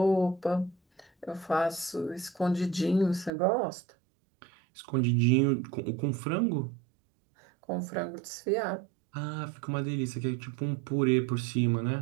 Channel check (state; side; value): drops out; left; at 3.3 s